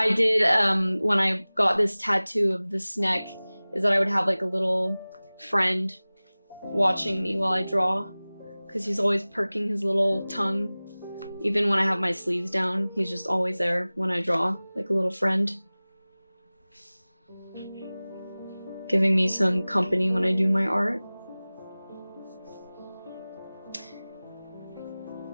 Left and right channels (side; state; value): both; inverted; correlation -0.99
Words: did when I got this tattoo of the snake is that I would have like a little friend watching me while I draw, because he's always perking his little tongue. Even when I have my sleeves down, he's just always there when I draw, like a little friend. Giving me some company when I do my art.